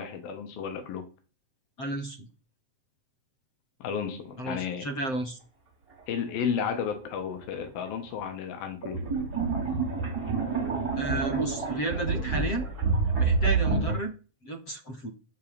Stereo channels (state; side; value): late; right; 7.7 ms